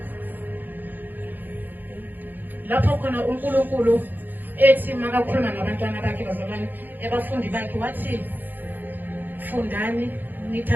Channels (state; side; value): late; left; 0.088 ms